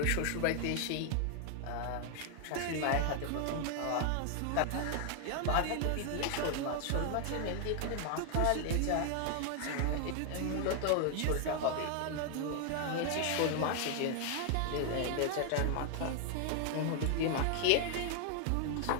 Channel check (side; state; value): both; different; correlation 0.00